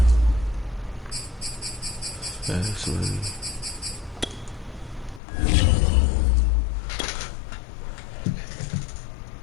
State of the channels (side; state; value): right; drops out; at 5.2 s